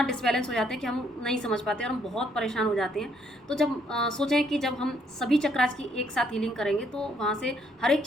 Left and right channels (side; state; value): both; normal; correlation 0.69